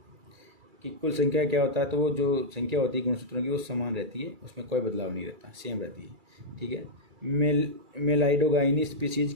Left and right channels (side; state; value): left; late; 2.3 ms